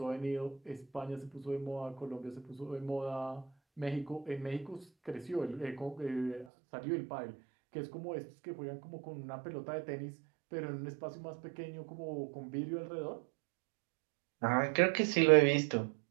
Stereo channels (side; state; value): left; drops out; at 6.5 s